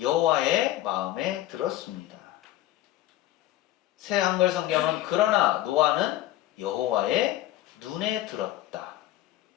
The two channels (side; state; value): right; quieter; 14.7 dB